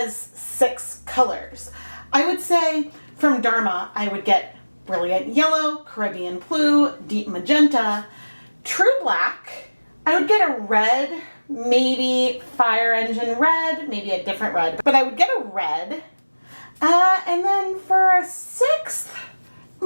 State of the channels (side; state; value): both; inverted; correlation -1.00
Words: 6 colors. I would say from Dharma, I would get Brilliant Yellow, Caribbean Blue, Deep Magenta, True Black. I would get a red, maybe Fire Engine Red, maybe a different red, but I would get a red. And then for a 6th,